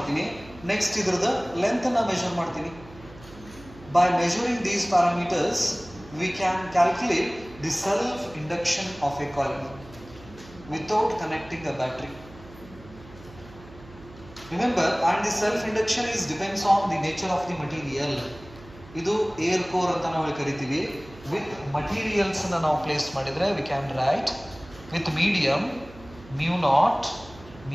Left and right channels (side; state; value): right; noise; hum, 20 dB below the sound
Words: ನೆಕ್ಸ್ಟ್ ಇದ್ರದ ಲೆಂತ್ ಅನ್ನ ಮೆಜರ್ ಮಾಡ್ತೀನಿ. By measuring these parameters we can calculate the self induction of a coil without connecting a battery. Remember, and the self induction is depends on the nature of the material. Idu air core anta ನಾವು ಕರಿತೀವಿ. With materials ಅನ್ನು ನಾವು ಪ್ಲೇಸ್ ಮಾಡಿದ್ರೆ we can write with medium mu naught